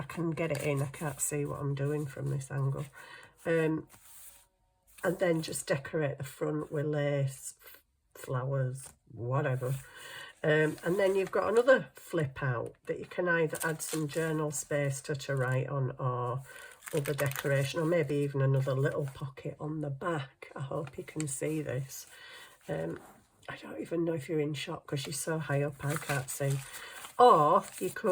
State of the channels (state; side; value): identical; both; correlation 1.00